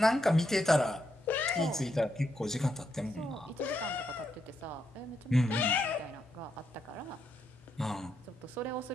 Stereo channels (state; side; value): normal; both; correlation 0.81